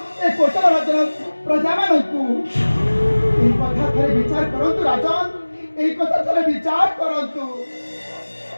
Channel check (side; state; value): both; inverted; correlation -1.00